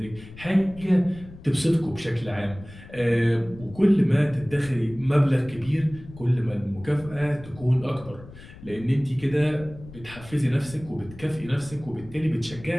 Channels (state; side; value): noise; left; rumble, 17 dB below the sound